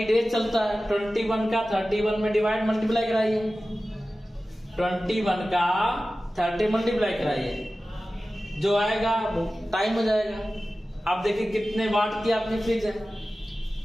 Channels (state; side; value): normal; both; correlation 0.95